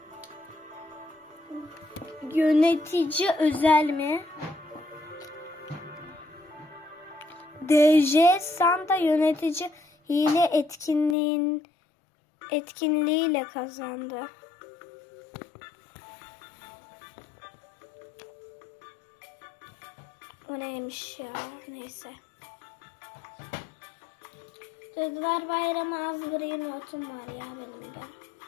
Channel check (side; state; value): right; drops out; at 11.2 s